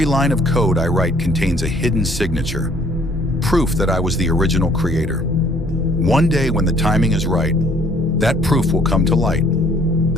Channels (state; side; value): normal; both; correlation 0.60